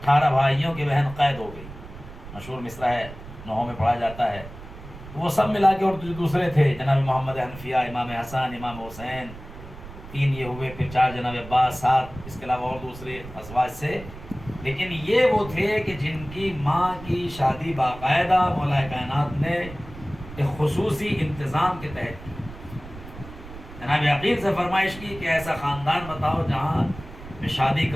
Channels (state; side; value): noise; right; rumble, 15 dB below the sound